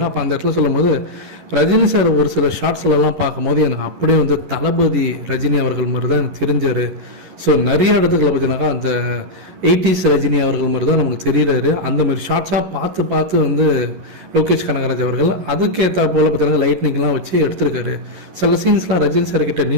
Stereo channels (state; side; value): late; left; 11 ms